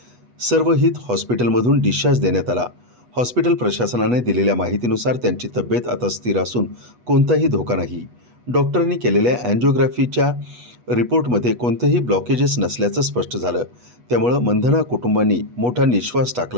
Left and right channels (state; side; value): late; left; 8.2 ms